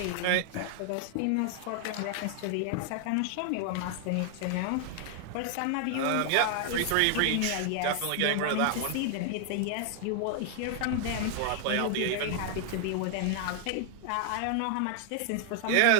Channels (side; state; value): both; different; correlation 0.00